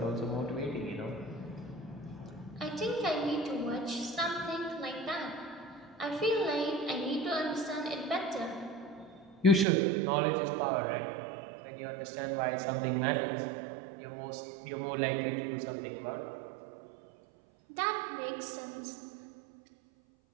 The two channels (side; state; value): left; drops out; at 9.7 s